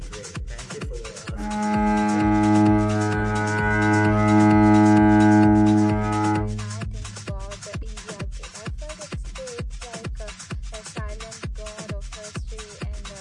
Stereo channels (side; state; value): both; identical; correlation 1.00